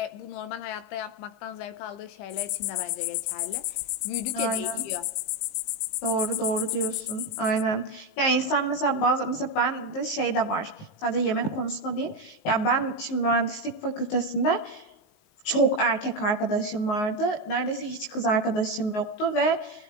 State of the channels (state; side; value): late; right; 19 ms